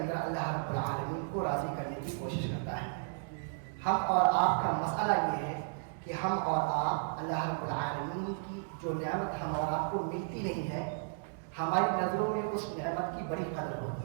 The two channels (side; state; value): left; silent; digital silence